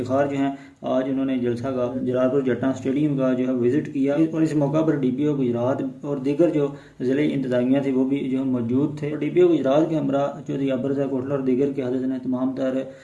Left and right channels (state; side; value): identical; both; correlation 1.00